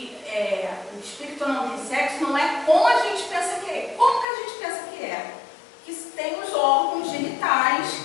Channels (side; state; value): right; drops out; at 4.2 s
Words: o espírito não tem sexo não é como a gente pensa que é. Como que a gente pensa que é? Que tem os órgãos genitais